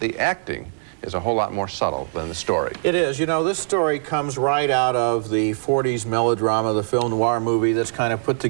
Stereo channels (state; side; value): silent; left; digital silence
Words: acting is a whole lot more subtle than the story. It is. You know, this story comes right out of the 40s melodrama, the film noir movie that's kind of put